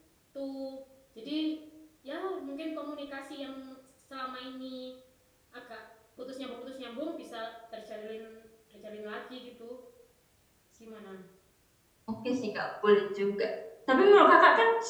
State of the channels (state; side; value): identical; both; correlation 1.00